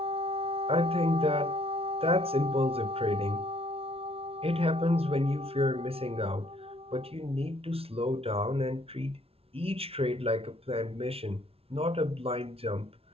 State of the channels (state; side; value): late; left; 0.28 ms